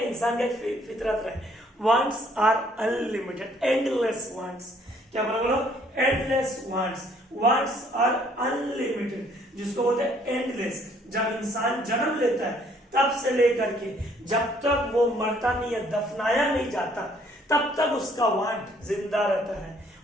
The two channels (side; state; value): both; normal; correlation 0.63